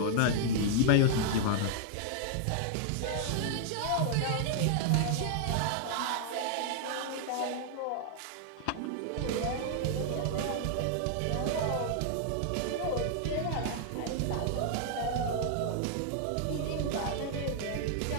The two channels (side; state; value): both; different; correlation -0.01